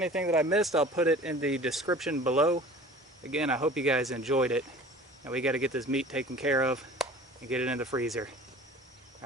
that I missed, I'll put it in the description below. Again, I hope you guys enjoyed it. And we got to get this meat taken care of and get it in the freezer.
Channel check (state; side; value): normal; both; correlation 0.43